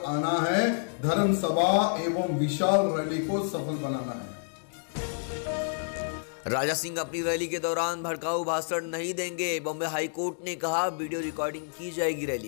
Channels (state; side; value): silent; right; digital silence